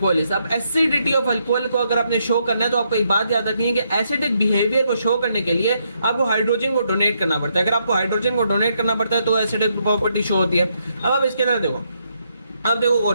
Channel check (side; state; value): both; inverted; correlation -0.77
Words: is. अब एसिडिटी ऑफ अल्कोहल को अगर आपने शो करना है तो आपको एक बात याद रखनी है कि एसिडिक बिहेवियर को शो करने के लिए आपको हाइड्रोजन को डोनेट करना पड़ता है। अगर आपको हाइड्रोजन को डोनेट करना पड़ता है तो एसिडिक प्रॉपर्टी शो होती है। अब आप इसके अंदर देखो, अब देखो